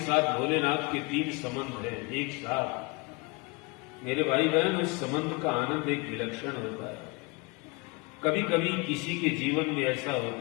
साथ भोलेनाथ के 3 संबंध हैं एक साथ। मेरे भाई बहन, उस संबंध का आनंद एक विलक्षण होता है। कभी कभी किसी के जीवन में ऐसा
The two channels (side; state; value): right; quieter; 27.6 dB